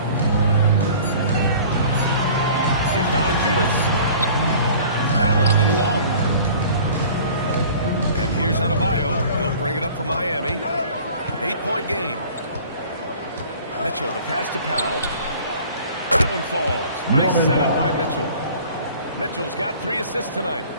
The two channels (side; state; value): both; inverted; correlation -0.47